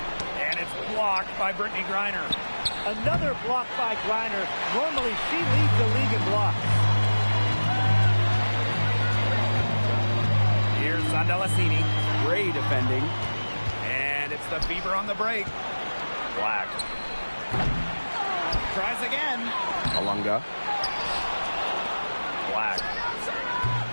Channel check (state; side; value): inverted; both; correlation -1.00